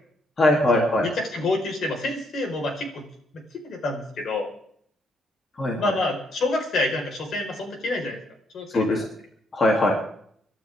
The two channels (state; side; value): normal; both; correlation 0.73